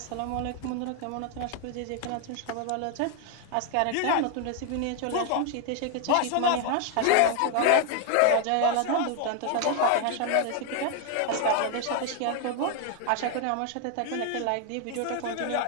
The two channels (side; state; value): both; different; correlation 0.00